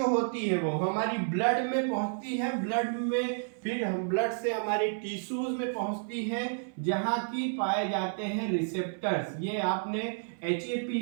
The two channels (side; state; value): left; silent; 57 dB below the other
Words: होती है वो हमारी ब्लड में पहुंचती है, ब्लड में फिर हम ब्लड से हमारे टिश्यूज में पहुंचती है जहां की पाए जाते हैं रिसेप्टर्स। ये आपने HAP